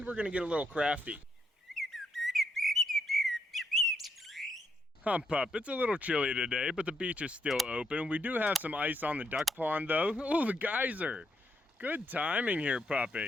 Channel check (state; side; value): normal; both; correlation 0.77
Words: we're going to get a little crafty. Hump up. It's a little chilly today, but the beach is still open. We do have some ice on the duck pond though. Oh, the geyser. Good timing here,